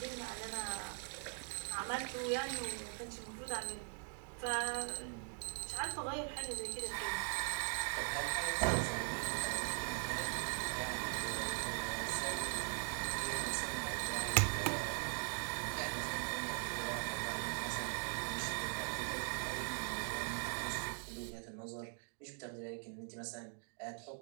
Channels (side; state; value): left; silent; 50 dB below the other